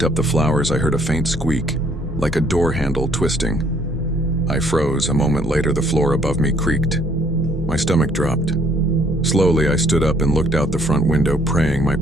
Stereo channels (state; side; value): normal; both; correlation 0.63